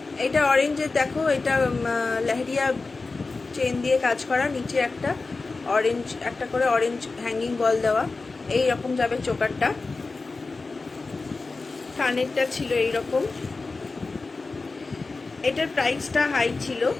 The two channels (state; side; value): quieter; right; 3.8 dB